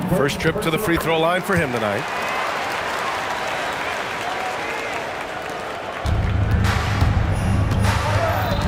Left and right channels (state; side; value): identical; both; correlation 1.00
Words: First trip to the free throw line for him tonight.